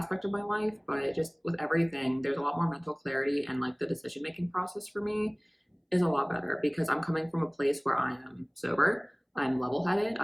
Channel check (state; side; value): identical; both; correlation 1.00